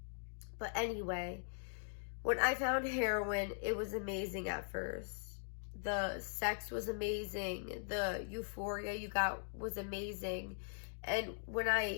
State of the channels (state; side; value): silent; right; digital silence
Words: But anyway, when I found heroin, it was amazing at first. The sex was amazing. The euphoria you got was amazing. And when